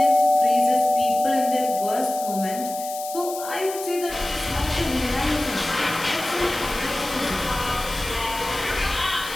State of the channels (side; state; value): left; noise; hiss, 11 dB below the sound